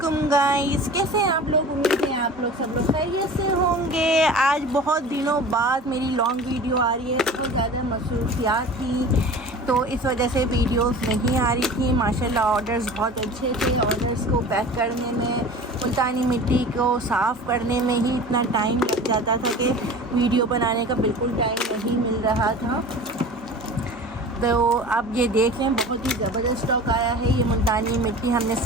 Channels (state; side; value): normal; both; correlation 0.39